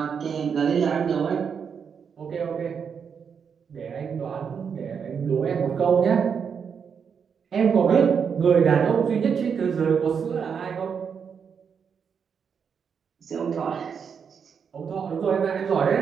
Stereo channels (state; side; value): quieter; left; 6.7 dB